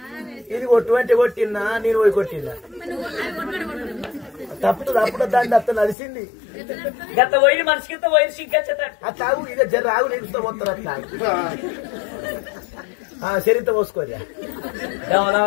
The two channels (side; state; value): right; drops out; at 6.0 s